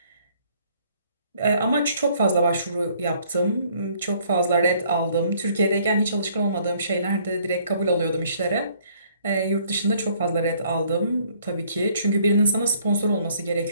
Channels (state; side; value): inverted; both; correlation -0.62